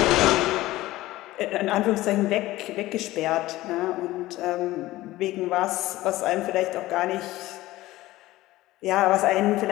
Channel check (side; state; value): right; quieter; 17.1 dB